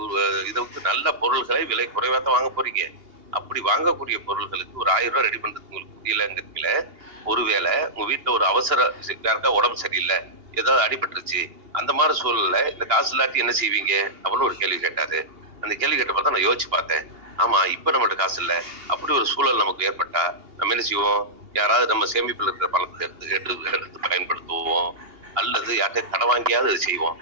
இதுக்கு நல்ல பொருள்களை விலை குறைவா தான் வாங்க போறீங்க. அப்படி வாங்கக்கூடிய பொருள்களுக்கு ஒரு 1000 ரூபாய் ரெடி பண்றதுக்கு உங்களுக்கு முடியலங்கிறதுல, ஒருவேளை உங்க வீட்டுல ஒரு அவசர யாருக்கா உடம்பு சரியில்லை, ஏதாவது அடிபட்டுருச்சு, அந்த மாதிரி சூழல்ல இந்த காசு இல்லாட்டி என்ன செய்வீங்க அப்படின்னு ஒரு கேள்வி கேட்டாரு. அந்த கேள்வி கேட்ட பார்த்தா நான் யோசிச்சு பார்த்தேன். ஆமா, இப்ப நம்மகிட்ட காசு இல்ல, அப்படி ஒரு சூழல் நமக்கு ஏற்பட்டா நம்ம என்ன செய்வோம்? யாராவது நம்ம சேமிப்புல இருக்கிற பணத்தை எடுத்து பயன்படுத்துவோம், அல்லது யார்கிட்ட கடன் வாங்கியாவது அது செய்வோம்.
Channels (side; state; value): left; late; 2.8 ms